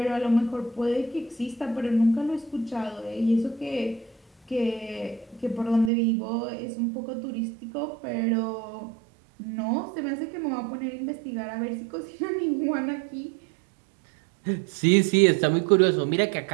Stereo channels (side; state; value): left; drops out; at 5.9 s